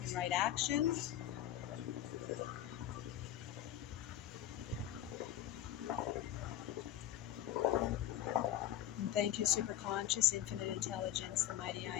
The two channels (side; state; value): right; quieter; 12.2 dB